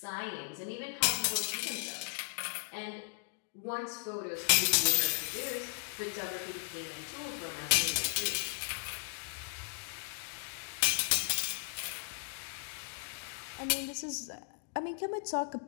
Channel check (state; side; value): silent; right; digital silence